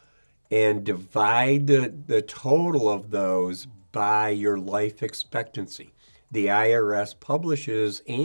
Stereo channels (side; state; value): both; inverted; correlation -1.00